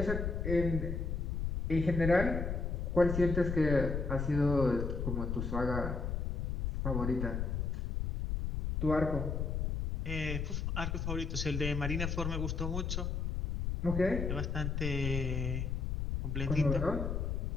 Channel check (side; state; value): left; noise; rumble, 1 dB below the sound